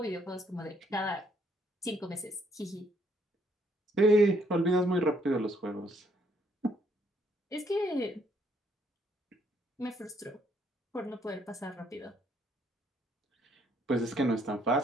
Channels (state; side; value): normal; both; correlation 0.69